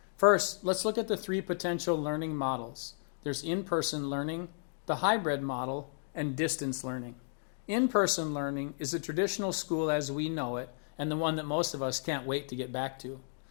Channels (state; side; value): silent; right; digital silence